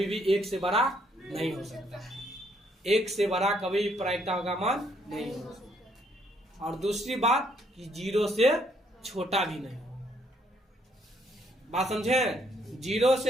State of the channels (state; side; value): normal; both; correlation 0.69